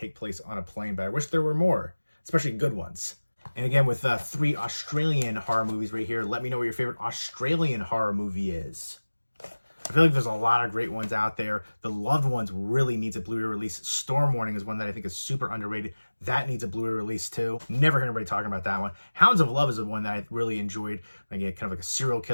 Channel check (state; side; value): inverted; both; correlation -1.00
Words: place on a plane, but I wish there were more, especially good ones. And again, with 3 Australian horror movies right here, let me know what your favorite Australian horror movie is. I feel like there's a lot of great ones out there. The Loved Ones really needs a Blu-ray release. Storm Warning is one that I think is super underrated. That needs a Blu-ray release too. Never heard anybody talking about that one. Hounds of Love is the one that I really enjoyed. Again, kind of like a serial